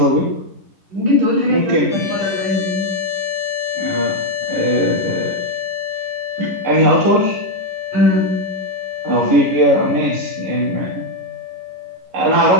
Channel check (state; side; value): late; left; 10 ms